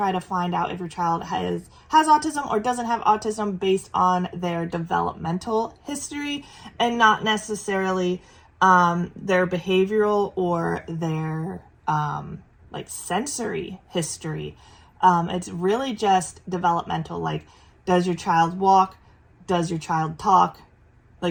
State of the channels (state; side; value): identical; both; correlation 1.00